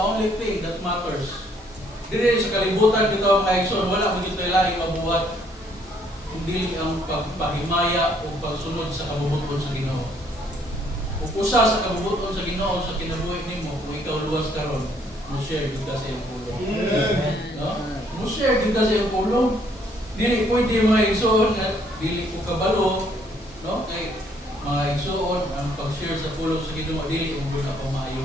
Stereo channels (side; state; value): both; normal; correlation 0.66